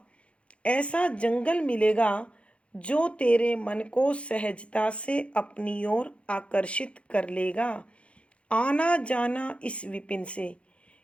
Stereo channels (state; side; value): late; right; 0.061 ms